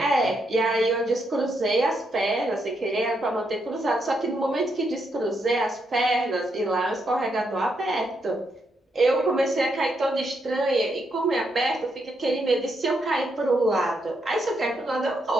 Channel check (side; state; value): both; normal; correlation 0.79